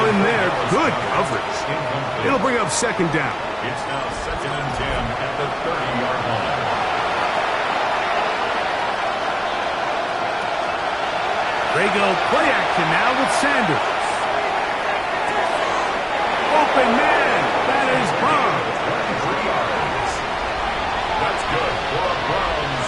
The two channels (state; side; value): identical; both; correlation 1.00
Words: in there. Good coverage. It'll bring up second down. It's now second and 10 at the 30-yard line. They go play action now with Sanders. Open man. That is Bond. 3 yards. That's good for a Browns